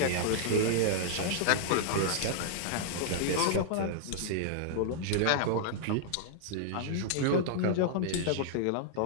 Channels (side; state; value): both; different; correlation -0.01